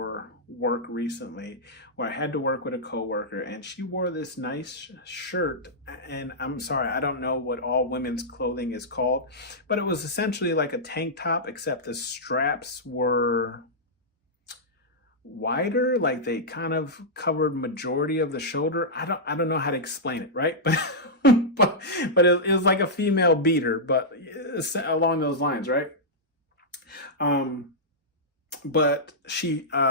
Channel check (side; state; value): both; normal; correlation -0.10